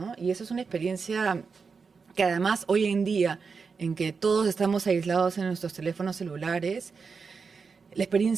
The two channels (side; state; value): left; quieter; 5.2 dB